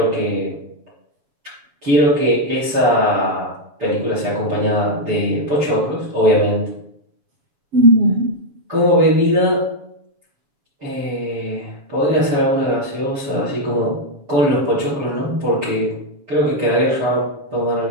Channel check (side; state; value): left; late; 7.1 ms